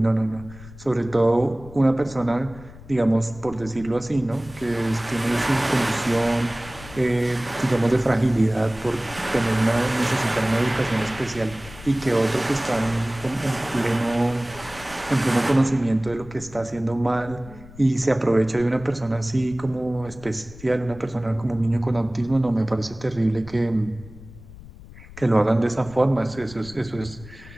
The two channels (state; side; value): noise; left; rumble, 18 dB below the sound